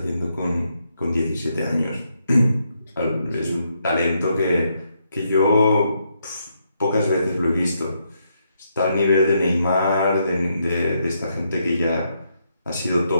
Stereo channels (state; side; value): inverted; both; correlation -0.78